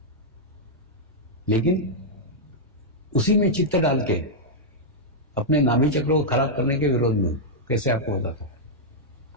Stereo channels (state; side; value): normal; both; correlation -0.06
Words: लेकिन उसी में चित्त डाल के अपने नाभि चक्र को खराब करने के विरोध में हूं। कैसे आपको बताता हूं।